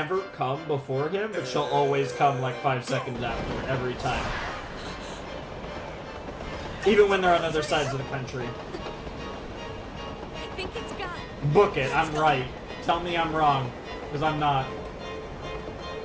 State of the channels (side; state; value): both; identical; correlation 1.00